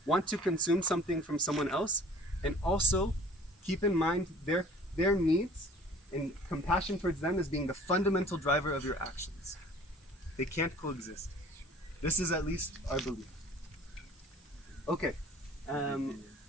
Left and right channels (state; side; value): normal; both; correlation 0.49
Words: want to consume something from someone else and also keep in mind their needs and compassion towards them as being the fundamental driver of your actions. They can't coexist. This is at least our belief. Okay,